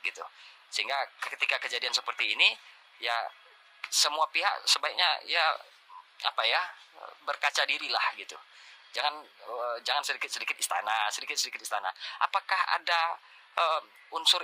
gitu. Sehingga ketika kejadian seperti ini ya semua pihak sebaiknya ya berkaca dirilah gitu. Jangan sedikit istana. Apakah ada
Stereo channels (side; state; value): both; identical; correlation 1.00